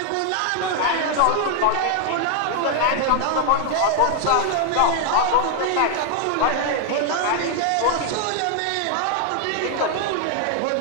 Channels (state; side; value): different; both; correlation 0.00